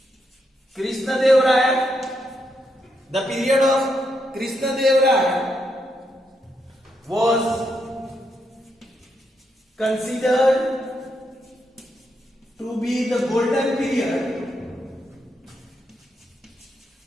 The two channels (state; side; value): normal; both; correlation 0.80